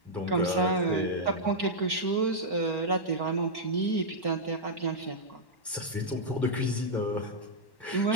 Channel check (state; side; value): late; right; 1.1 ms